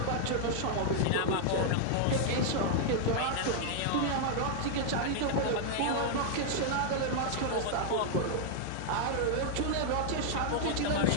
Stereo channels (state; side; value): different; both; correlation -0.01